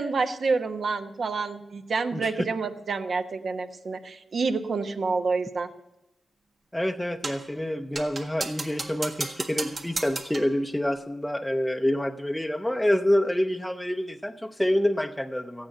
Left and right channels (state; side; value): normal; both; correlation 0.95